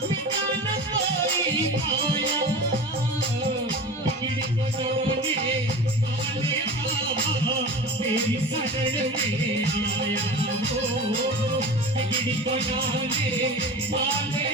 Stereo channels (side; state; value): both; normal; correlation 0.33